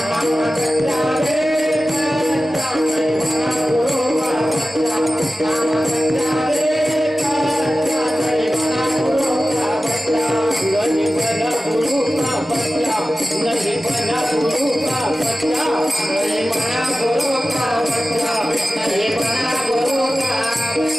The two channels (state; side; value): normal; both; correlation 0.95